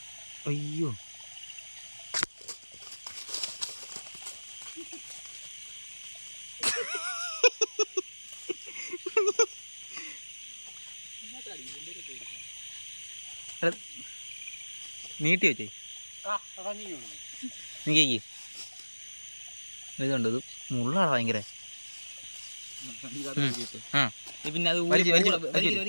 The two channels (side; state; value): both; inverted; correlation -1.00